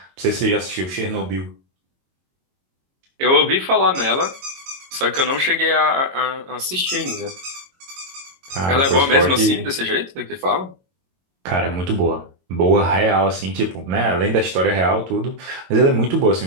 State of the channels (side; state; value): left; late; 22 ms